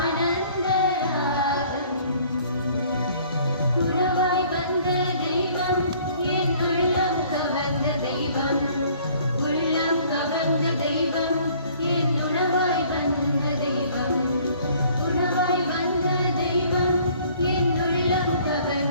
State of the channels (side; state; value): both; inverted; correlation -0.56